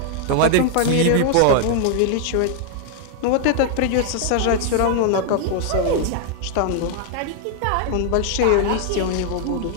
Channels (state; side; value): different; both; correlation 0.00